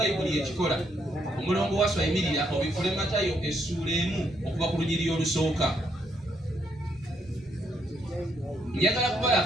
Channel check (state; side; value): normal; both; correlation 0.74